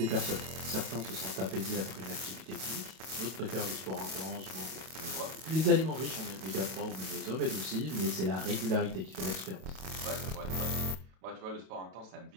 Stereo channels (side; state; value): left; late; 32 ms